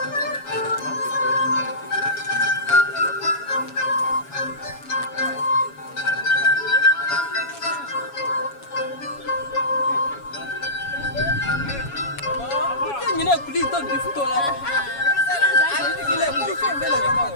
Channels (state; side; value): late; right; 7.2 ms